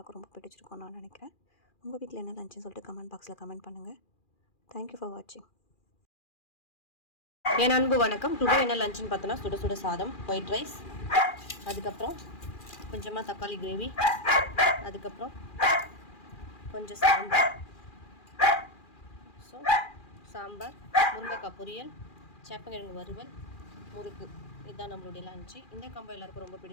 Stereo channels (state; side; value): late; right; 2.4 ms